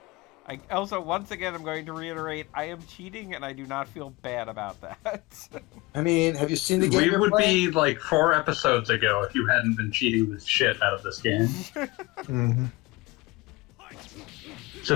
Also, once again, I'm going to reiterate, I am cheating and I do not feel bad about that. I mean, have you seen the game We you're would playing? be like 4 episodes ago if you hadn't been cheating the shit out of this game. Mm-hmm. It's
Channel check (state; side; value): quieter; right; 22.2 dB